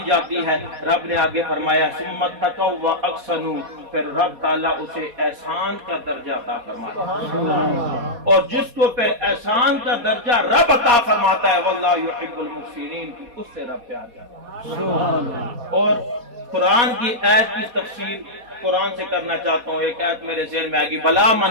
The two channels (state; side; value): late; left; 4.2 ms